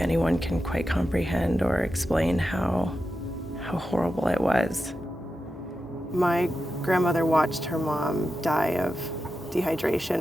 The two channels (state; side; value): normal; both; correlation 0.90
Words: can quite comprehend or explain how horrible it was. My grandmother watched her mom die of dehydration,